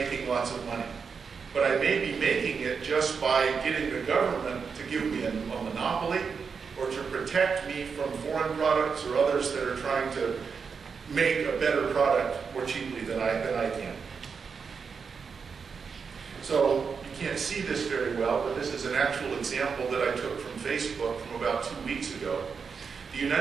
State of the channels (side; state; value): left; quieter; 5.7 dB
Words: lots of money. But I may be making it just by getting the government to give me a monopoly or to protect me from foreign products or others that are trying to make a better product more cheaply than I can. So you can't see this very well, but this is an actual example that I took from Facebook from about 2 weeks ago. The